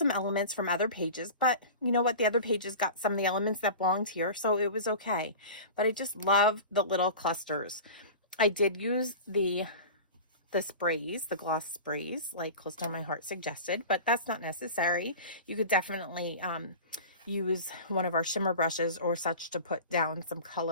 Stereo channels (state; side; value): inverted; both; correlation -0.34